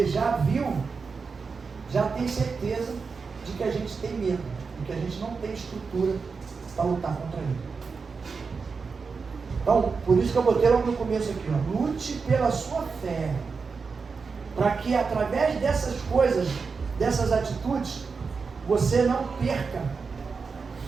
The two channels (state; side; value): quieter; left; 5.0 dB